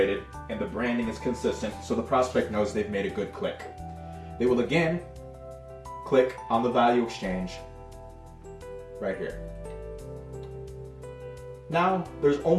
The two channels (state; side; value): identical; both; correlation 1.00